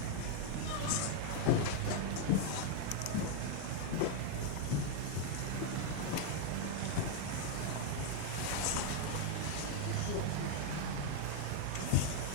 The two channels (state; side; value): different; both; correlation 0.00